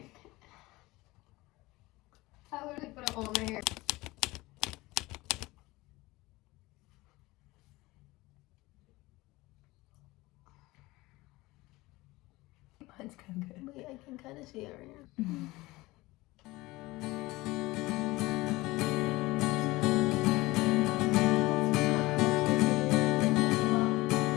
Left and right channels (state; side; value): quieter; right; 20.4 dB